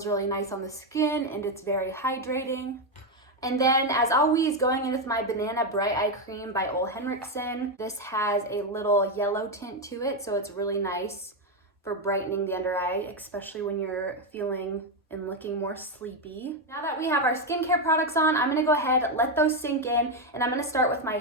really nice on the skin and it's very hydrating. And then as always, going in with my Banana Bright Eye Cream by Ole Henriksen. This has a little yellow tint to it, so it's really nice for brightening the under eye, especially when you're feeling and looking more sleepy. Now that we have our skincare products on, I'm gonna go ahead, let those sink in, and I'm gonna start with my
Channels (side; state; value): both; normal; correlation 0.06